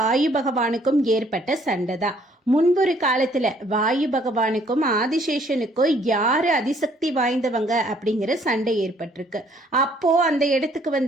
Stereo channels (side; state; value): both; normal; correlation 0.63